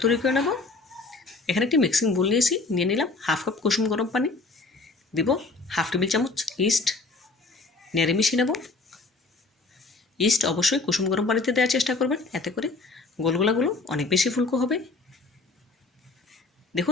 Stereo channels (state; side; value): quieter; right; 3.7 dB